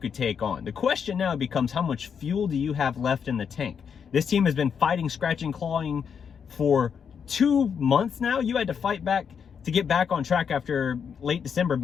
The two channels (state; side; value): quieter; right; 7.0 dB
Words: take on. The question now becomes, how much fuel do you have left in the tank? This team has been fighting, scratching, clawing for 2 months now. You had to fight back to get back on track after late December